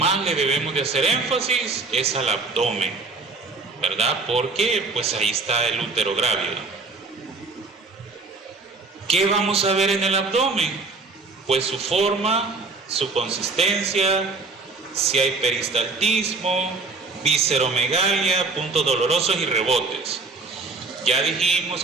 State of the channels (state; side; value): quieter; left; 3.9 dB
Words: le debemos de hacer énfasis es al abdomen, ¿verdad? Porque pues ahí está el útero grávido. ¿Qué vamos a ver en el abdomen? Pues su forma, su consistencia, si hay peristaltismo, visceromegalia, puntos dolorosos y rebotes. Ya dijimos